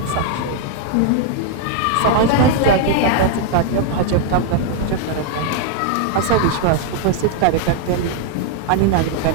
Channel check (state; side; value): different; both; correlation 0.00